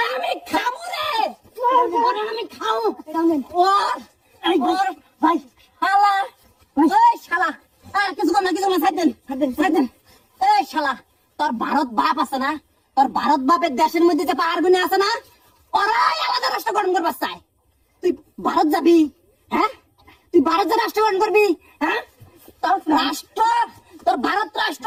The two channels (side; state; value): both; identical; correlation 1.00